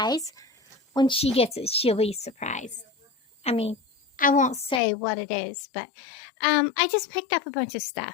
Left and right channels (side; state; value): right; drops out; at 4.8 s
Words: When she gets it, she'll be surprised. I mean, I won't say what it is, but I just picked up a bunch of stuff.